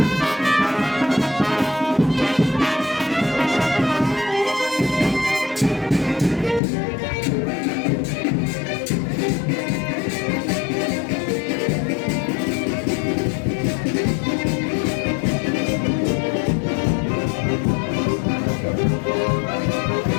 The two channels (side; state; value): right; drops out; at 6.6 s